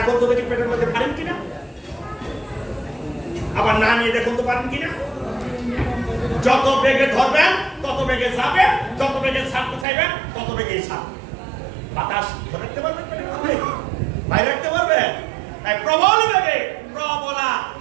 তো দেখি পেটের মধ্যে পারেন কিনা, আবার না নিয়ে দেখুন তো পারেন কিনা। যত বেগে ধরবেন তত বেগে যাবে, যত বেগে ছাড়তে চাইবেন তত বেগেই ছাড়বে। বাতাস ধরে রাখতে পারবেন, বাইরে রাখতে পারবেন। তাই প্রবল বেগে প্রবলা,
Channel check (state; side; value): drops out; left; at 9.9 s